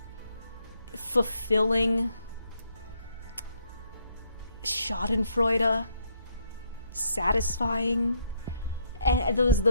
Fulfilling. Schadenfreude. Satisfying. And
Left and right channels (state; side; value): inverted; both; correlation -0.73